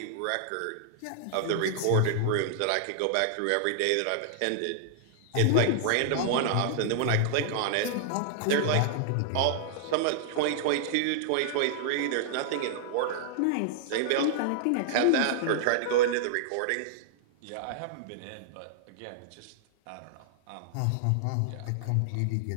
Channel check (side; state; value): both; different; correlation -0.01